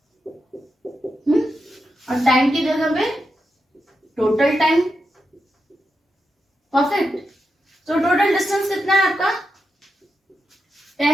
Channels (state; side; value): normal; both; correlation 0.87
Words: और टाइम की जगह पे टोटल टाइम। परफेक्ट। तो टोटल डिस्टेंस कितना है आपका?